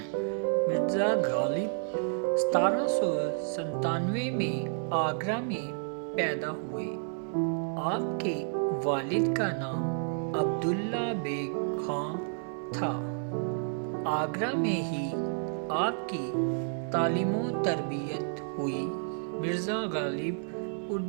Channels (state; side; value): silent; left; digital silence